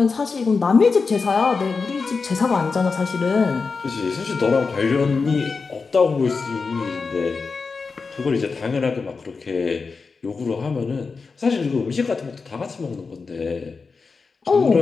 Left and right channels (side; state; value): right; quieter; 4.7 dB